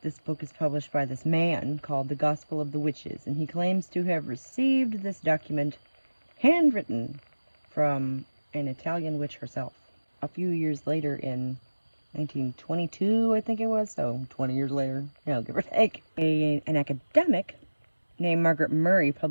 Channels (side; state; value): both; inverted; correlation -1.00